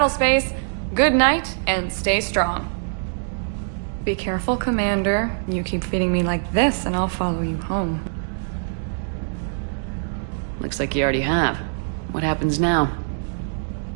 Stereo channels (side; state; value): left; silent; digital silence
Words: Good night, and stay strong. Be careful, Commander. You keep feeding me like this, and I'll follow you home. Looks like you already have. What happens now?